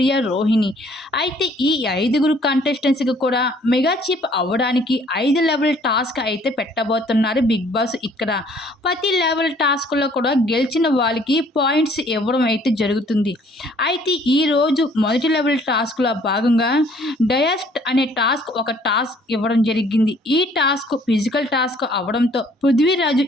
'రోహిణి' అయితే ఈ ఐదుగురు కంటెస్టెంట్స్‌కి కూడా మెగా చీఫ్ అవ్వడానికి 5 లెవెల్ టాస్క్ అయితే పెట్టబోతున్నారు బిగ్ బాస్ ఇక్కడ. ప్రతి లెవెల్ టాస్క్‌లో కూడా గెలిచిన వాళ్ళకి పాయింట్స్ ఇవ్వడం అయితే జరుగుతుంది. అయితే ఈరోజు మొదటి లెవెల్ టాస్క్‌లో భాగంగా డయస్ట్ అనే ఒక టాస్క్ ఇవ్వడం జరిగింది. ఈ టాస్క్ ఫిజికల్ టాస్క్ అవ్వడంతో పృథ్వీరాజు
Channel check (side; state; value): both; normal; correlation 0.59